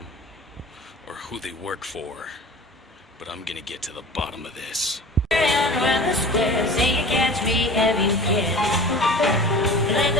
or who they work for. But I'm gonna get to the bottom of this. Around the square, say you catch me if you can. You let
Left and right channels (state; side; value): normal; both; correlation 0.39